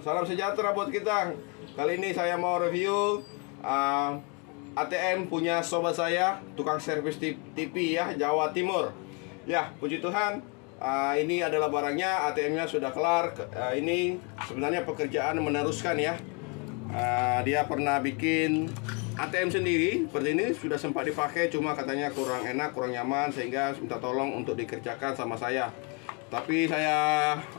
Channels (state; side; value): quieter; right; 33.1 dB